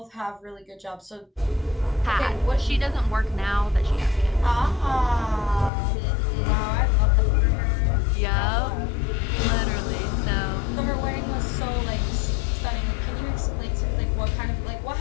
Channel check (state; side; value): drops out; right; at 5.7 s